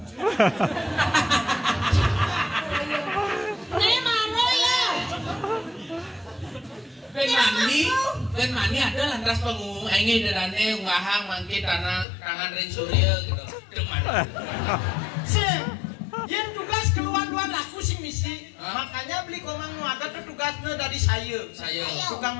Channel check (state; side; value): drops out; right; at 12.1 s